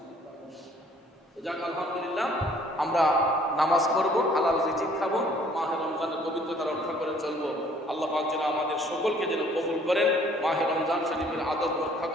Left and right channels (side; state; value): both; normal; correlation 0.58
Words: যাক আলহামদুলিল্লাহ, আমরা নামাজ পড়বো, হালাল রিজিক খাবো, মাহে রমজানের পবিত্রতা রক্ষা করে চলবো। আল্লাহ পাক যেন আমাদের সকলকে যেন কবুল করেন, মাহে রমজান শরীফের আদব রক্ষা